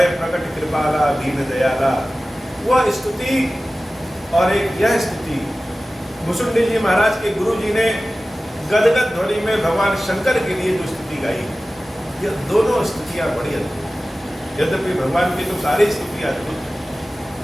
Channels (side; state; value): both; normal; correlation 0.96